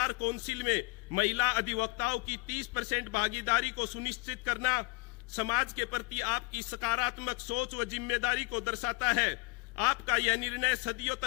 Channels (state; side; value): quieter; right; 24.6 dB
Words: Council में महिला अधिवक्ताओं की 30% भागीदारी को सुनिश्चित करना समाज के प्रति आपकी सकारात्मक सोच व जिम्मेदारी को दर्शाता है। आपका यह निर्णय सदियों